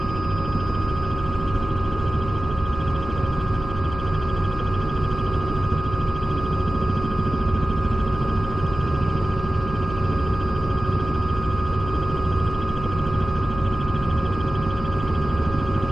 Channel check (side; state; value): left; noise; hum, 10 dB below the sound